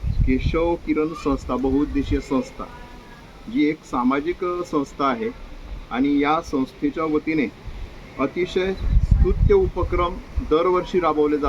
केशव किरण संस्था, बहुउद्देशीय संस्था, जी एक सामाजिक संस्था आहे आणि या संस्थेच्या वतीने अतिशय स्तुत्य उपक्रम दरवर्षी राबवले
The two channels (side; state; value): both; identical; correlation 1.00